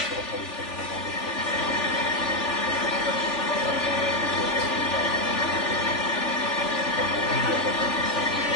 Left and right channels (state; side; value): late; right; 3.4 ms